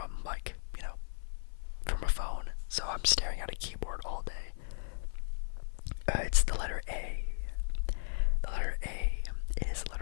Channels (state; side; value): silent; right; 54 dB below the other